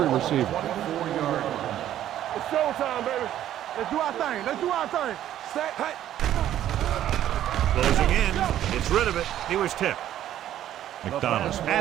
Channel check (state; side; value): quieter; left; 11.9 dB